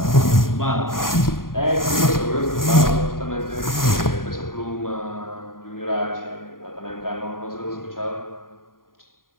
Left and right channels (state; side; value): late; right; 0.91 ms